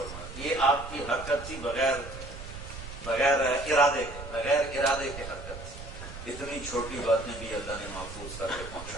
یہ آپ کی حرکت تھی بغیر ارادے کے حرکت تھی۔ اتنی چھوٹی باتیں بھی اللہ نے محفوظ کر کے پہنچا۔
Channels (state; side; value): noise; right; rumble, 11 dB below the sound